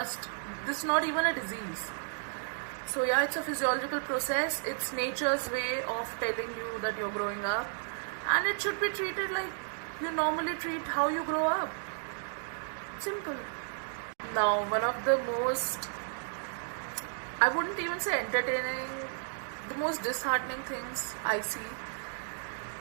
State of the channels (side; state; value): left; silent; digital silence